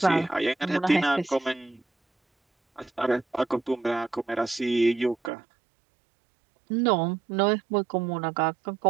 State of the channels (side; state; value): left; drops out; at 5.3 s